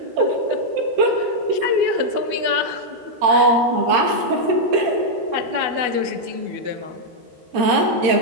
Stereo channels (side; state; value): left; late; 13 ms